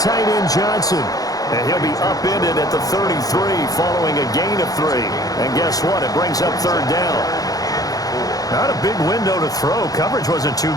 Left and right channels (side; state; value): right; late; 0.18 ms